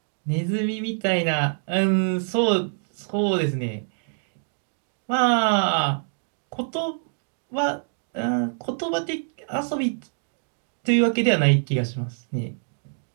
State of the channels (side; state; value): left; silent; digital silence